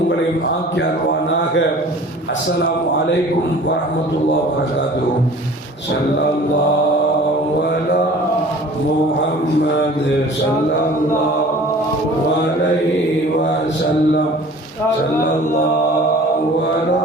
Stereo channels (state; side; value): normal; both; correlation 0.46